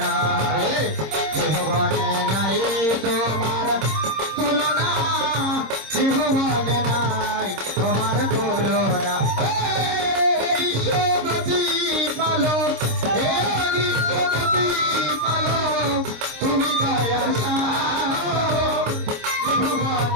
জীবনে নাই তোমার তুলনা, জীবনে নাই তোমার তুলনা। বিশ্বপতি পালক, হে বিশ্বপতি পালক, তুমি দয়ার সাগর,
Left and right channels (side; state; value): left; late; 26 ms